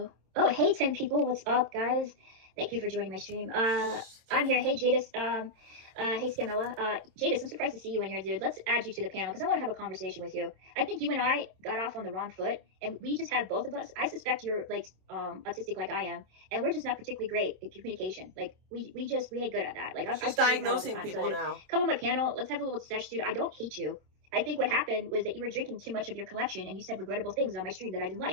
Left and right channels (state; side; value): late; left; 27 ms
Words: Oh, hey 10 people, what's up, guys? Thank you for joining my stream. I'm here. Hey Jadis. Hey Scamella. Jadis, I'm surprised to see you in here, dude. Let's add you to the panel because I want to have a conversation with you. I think you and I got off on the wrong foot, and we just have both of us. I suspect you're like autistic like I am, and we're just not particularly great at communication. Like we ain't good at that. Like She's diagnosing people now. Come on my panel. Let's have a little sesh, dude. I don't hate you. I think what happened was that you were drinking too much of your collection, and you said regrettable things on my stream that I didn't